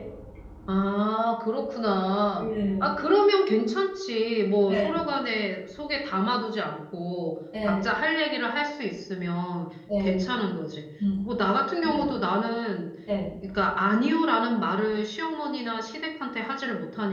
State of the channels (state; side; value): identical; both; correlation 1.00